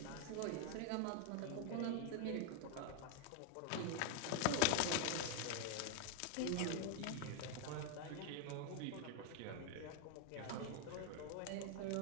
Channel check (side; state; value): both; different; correlation 0.00